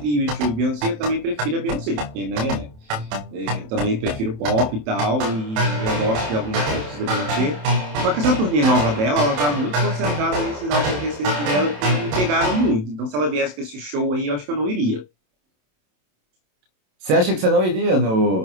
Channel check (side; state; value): left; late; 27 ms